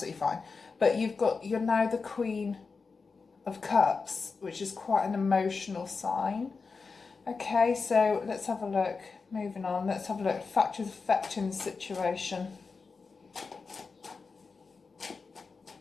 fine. But you're now the Queen of Cups, which is quite an emotional sign. Okay, so let's have a look. Moving on, let's have a look. Factors affecting the situation.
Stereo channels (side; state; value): right; quieter; 4.6 dB